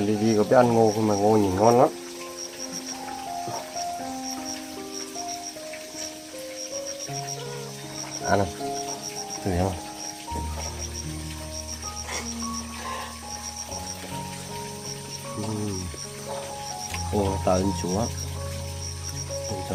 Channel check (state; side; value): identical; both; correlation 1.00